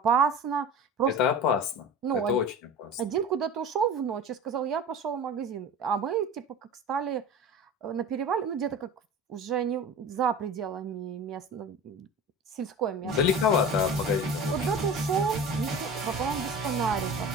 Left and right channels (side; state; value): both; normal; correlation 0.34